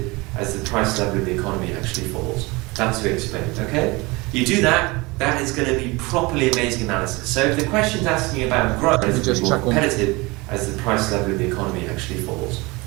as the price level of the economy actually falls. That's to explain it, okay? You do that, that is going to be properly amazing analysis. So if the question's asking about growth, relatively more competitive as the price level of the economy actually falls.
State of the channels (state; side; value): quieter; left; 24.3 dB